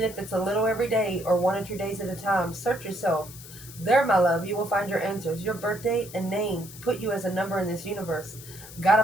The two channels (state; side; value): noise; left; hiss, 16 dB below the sound